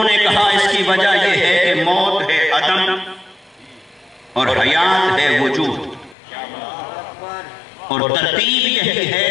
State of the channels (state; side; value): drops out; right; at 6.2 s